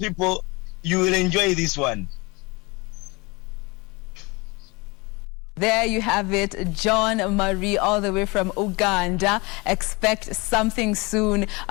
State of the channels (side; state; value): right; quieter; 26.0 dB